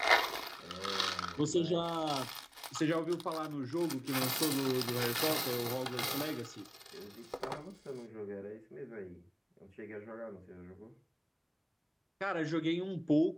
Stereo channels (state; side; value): identical; both; correlation 1.00